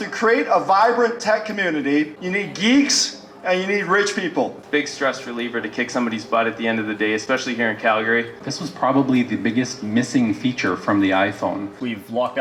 create a vibrant tech community, you need geeks and you need rich people. Big stress reliever to kick somebody's butt at the end of the day, especially here in Calgary. This was probably the biggest missing feature from the iPhone. We've locked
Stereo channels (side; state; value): both; identical; correlation 1.00